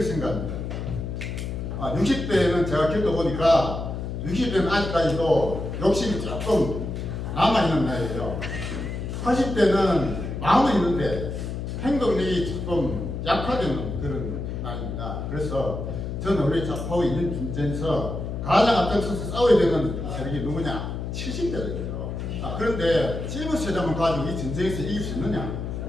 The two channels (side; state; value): left; noise; hum, 5 dB below the sound